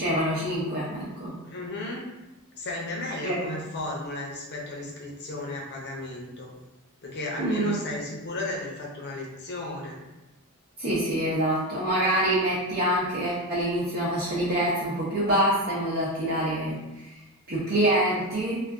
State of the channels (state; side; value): normal; both; correlation 0.17